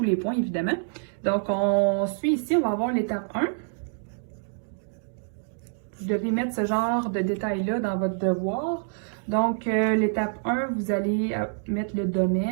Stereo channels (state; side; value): silent; left; digital silence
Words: les points, évidemment. Donc, on suit ici, on va avoir l'étape 1. Vous devez mettre ce genre de détails-là dans votre devoir. Donc, l'étape 1, vous allez mettre le